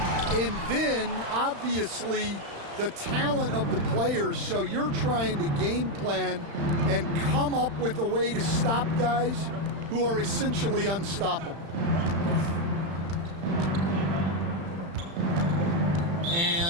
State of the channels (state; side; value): late; left; 35 ms